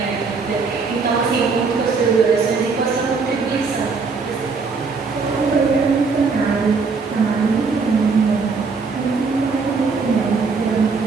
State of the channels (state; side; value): quieter; left; 4.7 dB